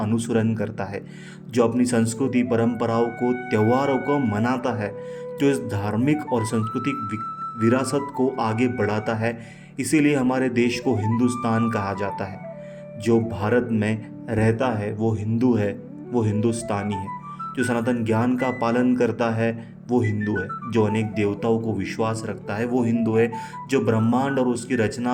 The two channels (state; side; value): identical; both; correlation 1.00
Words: करता है, जो अपनी संस्कृति, परंपराओं को, त्योहारों को मनाता है, जो इस धार्मिक और सांस्कृतिक विरासत को आगे बढ़ाता है। इसीलिए हमारे देश को हिंदुस्तान कहा जाता है। जो भारत में रहता है वो हिंदू है, वो हिंदुस्तानी है। जो सनातन ज्ञान का पालन करता है वो हिंदू है। जो अनेक देवताओं को विश्वास रखता है वो हिंदू है। जो ब्रह्मांड और उसकी